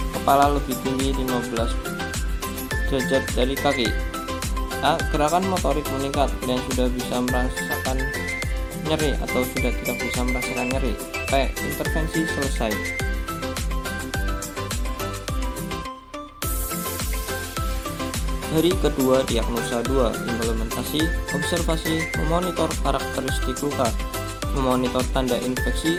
kepala lebih tinggi 15 derajat dari kaki. A. Gerakan motorik meningkat, klien sudah bisa merasakan nyeri atau sudah tidak bisa merasakan nyeri. P. Intervensi selesai. Hari kedua diagnosa 2. Implementasi, observasi, memonitor karakteristik luka, memonitor tanda infeksi,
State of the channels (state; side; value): identical; both; correlation 1.00